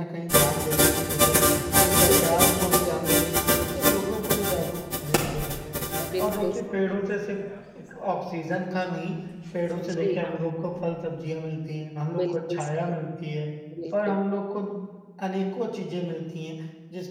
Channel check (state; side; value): identical; both; correlation 1.00